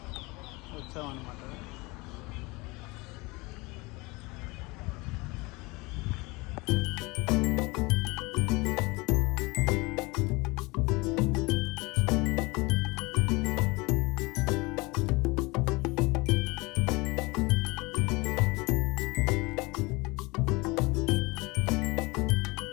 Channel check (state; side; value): quieter; right; 24.6 dB